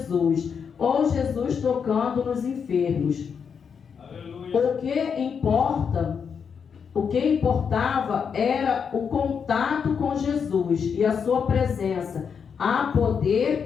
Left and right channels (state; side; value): quieter; right; 6.6 dB